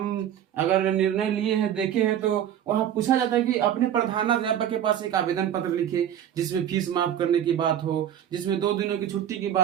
अगर निर्णय लिए हैं, देखे हैं, तो वहां पूछा जाता है कि अपने प्रधानाध्यापक के पास एक आवेदन पत्र लिखे जिसमें फीस माफ करने की बात हो, जिसमें 2 दिनों की छुट्टी की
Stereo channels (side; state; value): left; quieter; 10.2 dB